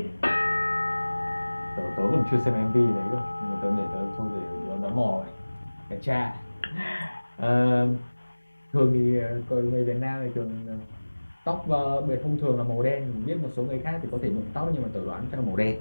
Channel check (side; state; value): both; inverted; correlation -1.00